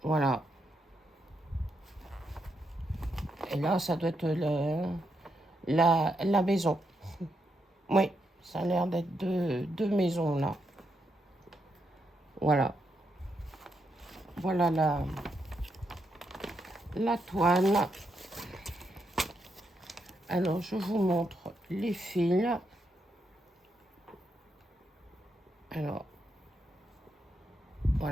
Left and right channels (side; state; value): both; normal; correlation 0.81